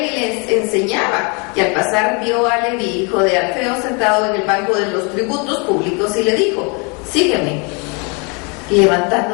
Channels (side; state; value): right; quieter; 32.5 dB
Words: y le enseñaba. Y al pasar vio a Leví, hijo de Alfeo, sentado en el banco de los tributos públicos, y le dijo: sígueme. Y